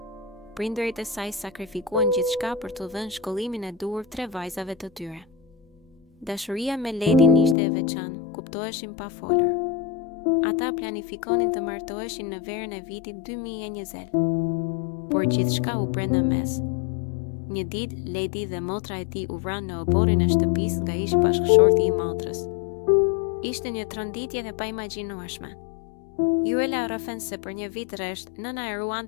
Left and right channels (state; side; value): drops out; right; at 7.6 s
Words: Prindërit e saj sakrifikuan gjithçka për t'u dhënë shkollimin e duhur 3 vajzave të tyre. Dashuria me Ledin ishte e veçantë, kuptoheshin pa folur. Ata planifikonin të martoheshin në verën e vitit 2020, por gjithçka u prenda mes. Një ditë, Ledi dhe motra e tij u vranë në oborrin e shtëpisë nga ish bashkëshorti i motrës. Ishte një tronditje e paimagjinueshme. Juela rrëfen se për një vit rresht, nëna e